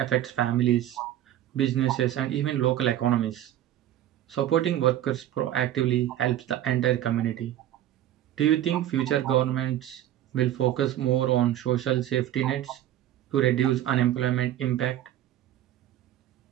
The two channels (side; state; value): left; quieter; 12.4 dB